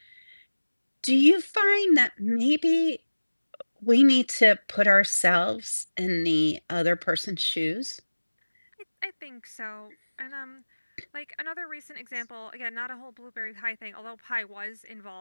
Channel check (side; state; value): both; inverted; correlation -1.00